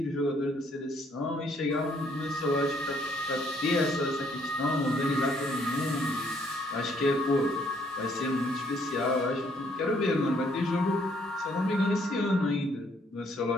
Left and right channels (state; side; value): normal; both; correlation 0.67